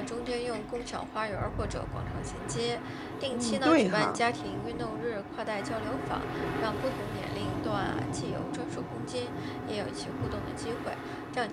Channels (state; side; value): identical; both; correlation 1.00